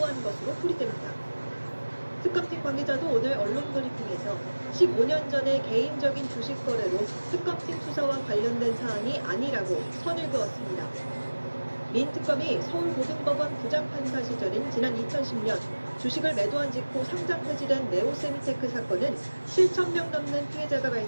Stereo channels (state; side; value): inverted; both; correlation -1.00